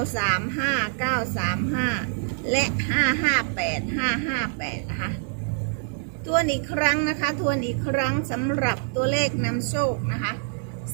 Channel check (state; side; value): silent; left; 62 dB below the other